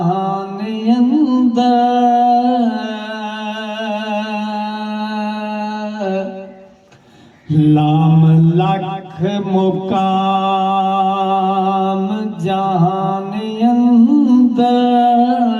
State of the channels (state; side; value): identical; both; correlation 1.00